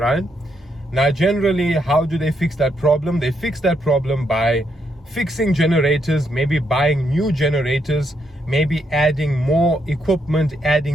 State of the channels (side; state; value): both; normal; correlation 0.78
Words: Now, generally, how do they fix that problem? They fix that problem by fixing generators, maybe buying new generators, maybe adding more equipment,